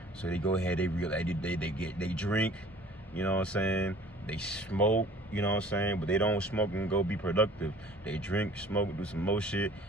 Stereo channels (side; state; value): both; normal; correlation 0.50